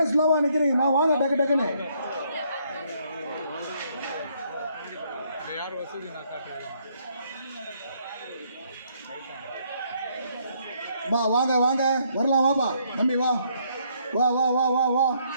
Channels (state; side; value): inverted; both; correlation -0.70